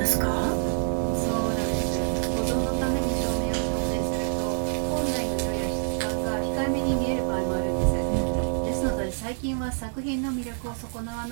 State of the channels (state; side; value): silent; left; digital silence